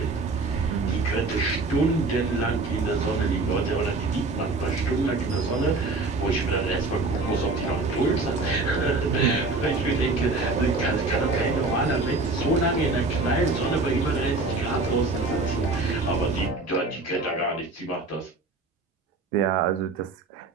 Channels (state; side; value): quieter; left; 3.5 dB